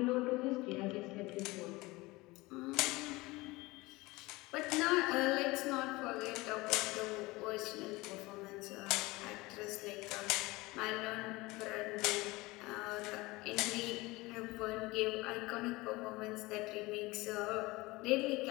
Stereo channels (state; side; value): quieter; right; 21.7 dB